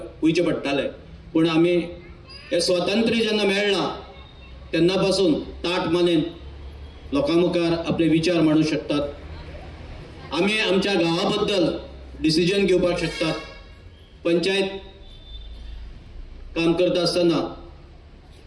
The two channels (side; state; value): both; identical; correlation 1.00